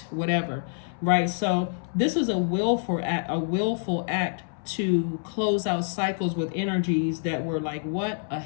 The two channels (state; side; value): silent; right; 60 dB below the other